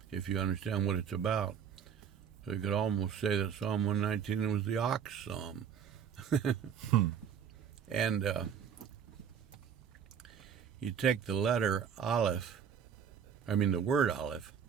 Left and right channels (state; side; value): quieter; left; 7.7 dB